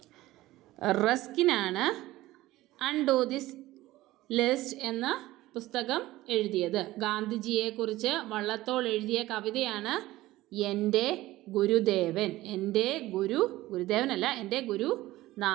റസ്കിനാണ് അൺ ടു ദിസ് ലിസ്റ്റ് എന്ന പുസ്തകം എഴുതിയത്. ഗാന്ധിജിയെക്കുറിച്ച് വള്ളത്തോൾ എഴുതിയ കവിതയാണ് എൻ്റെ ഗുരുദേവൻ. എൻ്റെ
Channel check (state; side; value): quieter; left; 17.0 dB